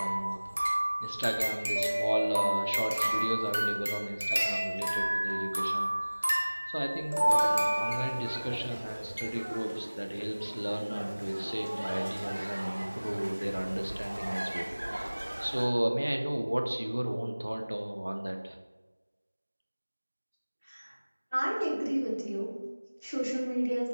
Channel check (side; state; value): both; inverted; correlation -1.00